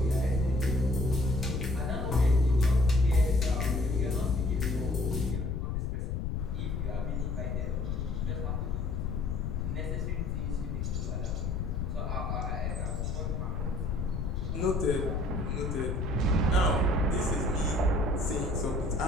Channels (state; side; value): noise; left; rumble, 1 dB below the sound